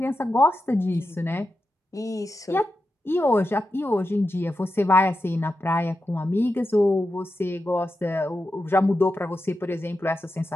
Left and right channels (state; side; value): normal; both; correlation 0.89